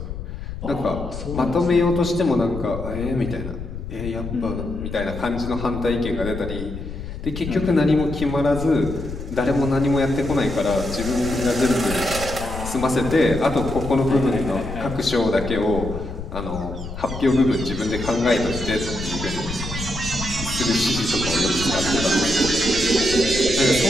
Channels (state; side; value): noise; left; rumble, 8 dB below the sound